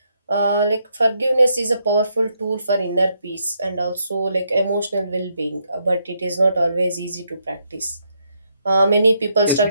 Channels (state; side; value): inverted; both; correlation -0.77